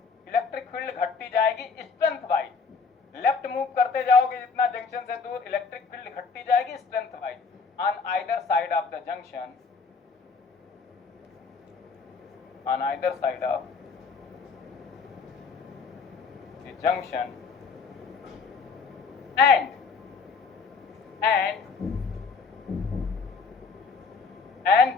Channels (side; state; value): right; quieter; 5.0 dB